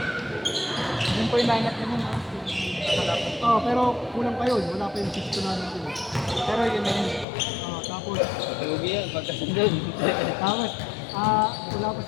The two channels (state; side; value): drops out; right; at 7.2 s